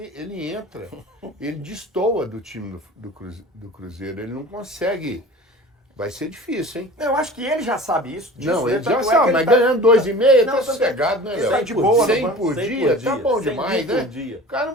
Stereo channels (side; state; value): both; normal; correlation 0.40